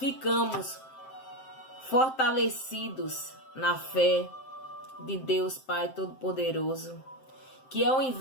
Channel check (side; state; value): right; late; 7.7 ms